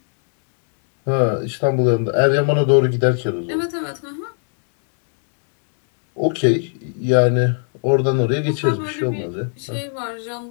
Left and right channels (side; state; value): right; silent; 65 dB below the other